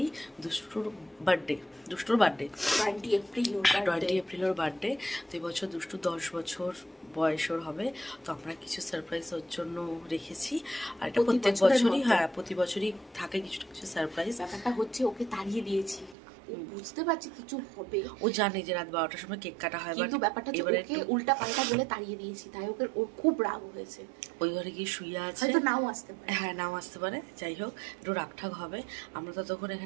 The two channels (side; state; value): left; drops out; at 16.2 s